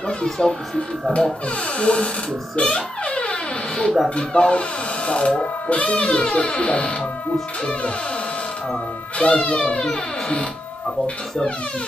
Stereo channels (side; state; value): both; normal; correlation 0.84